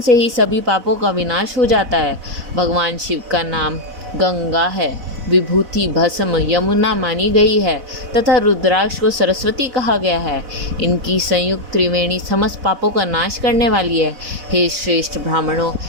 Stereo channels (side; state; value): left; late; 4.0 ms